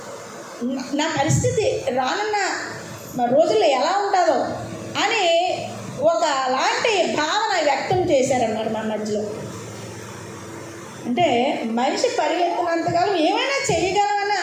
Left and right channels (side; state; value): both; identical; correlation 1.00